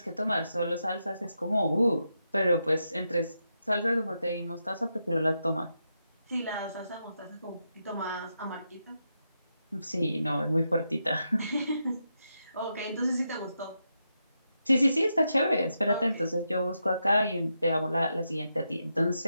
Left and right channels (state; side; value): inverted; both; correlation -0.84